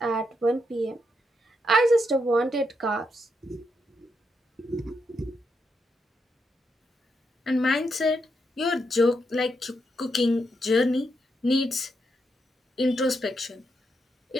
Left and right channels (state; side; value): normal; both; correlation 0.81